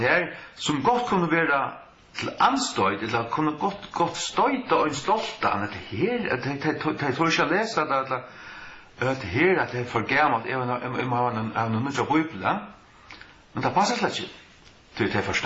som godt kunne være til anstøyd, eller kunne godt støyta og en stolta, at her, jeg tror ikke jeg leser det, at her, at det for gammelt, jeg har noen nødt av Bibelen, men det passer slett ikke. de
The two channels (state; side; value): identical; both; correlation 1.00